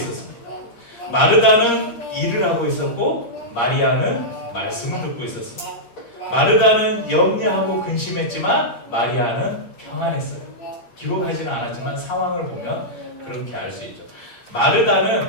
마르다는 일을 하고 있었고 마리아는 말씀을 듣고 있었습니다. 마르다는 염려하고 근심했지만 마리아는 평안했어요. 기록하지는 않았지만 상황을 보면 그렇게 알 수 있죠.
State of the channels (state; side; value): late; right; 8.6 ms